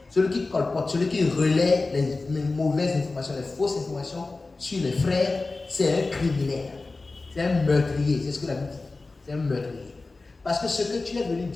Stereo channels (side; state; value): right; quieter; 3.5 dB